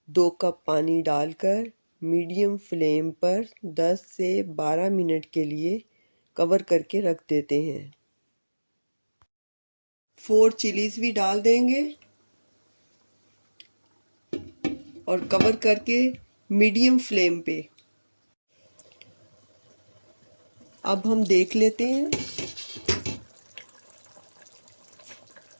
2 कप पानी डालकर मीडियम फ्लेम पर 10 से 12 मिनट के लिए कवर करके रख देते हैं। 4 चिलीज भी डाल देंगे और कवर करके मीडियम फ्लेम पे। अब हम देख लेते हैं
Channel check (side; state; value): both; inverted; correlation -1.00